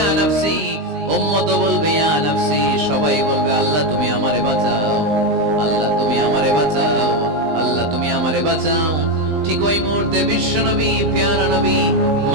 নফসি, উম্মত বলবে ইয়া নফসি। সবাই বলবে আল্লাহ তুমি আমারে বাঁচাও, আল্লাহ তুমি আমারে বাঁচাও, আল্লাহ তুমি আমারে বাঁচাও। ঠিক ওই মুহূর্তে বিশ্বনবী প্যারা নবী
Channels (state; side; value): late; left; 19 ms